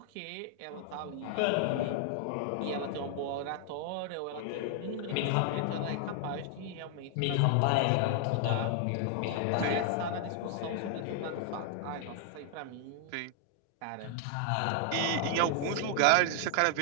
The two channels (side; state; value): both; different; correlation 0.00